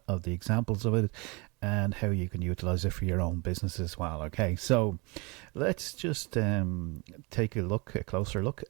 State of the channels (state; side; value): quieter; left; 28.2 dB